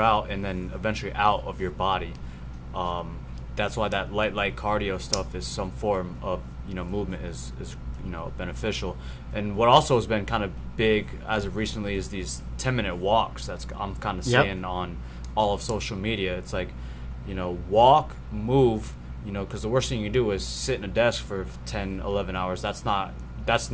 and then eventually out of your body. That's why that light cardio stuff is some form of, you know, movement is you know, beneficial. And what also has been kind of big as of recently is these 10-minute walks. I'm kind of seeing on all of social media. It's like, you know, walk, move. You know, because the worst thing you can do is sit in a desk for 10, 11 hours. That's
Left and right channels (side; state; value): both; identical; correlation 1.00